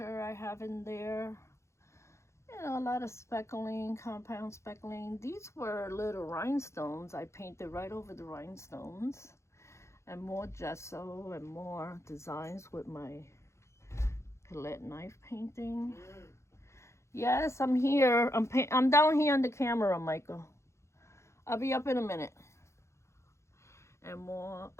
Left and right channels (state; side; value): late; right; 0.14 ms